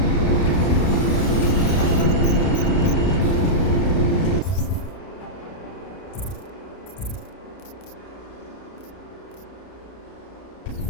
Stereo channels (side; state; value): right; late; 33 ms